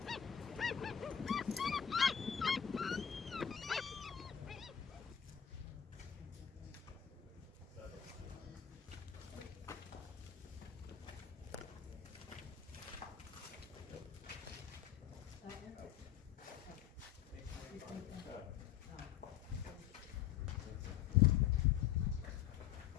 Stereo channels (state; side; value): quieter; right; 9.2 dB